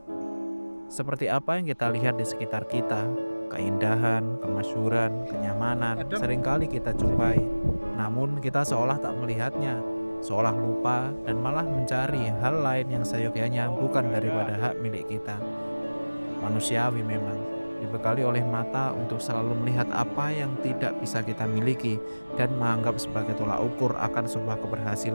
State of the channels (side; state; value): both; inverted; correlation -1.00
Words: Seperti apa yang kita lihat di sekitar kita, keindahan, kemasyhuran, kenyamanan, Adem. seringkali kita jumpai. Namun kita seolah tak melihatnya, seolah lupa dan malah mencari hal lain yang seyogyanya bukan daripada hak milik kita. Manusiawi memang, dibekali oleh mata untuk selalu melihat apa yang tidak bisa kita miliki dan menganggap sebagai tolak ukur akan sebuah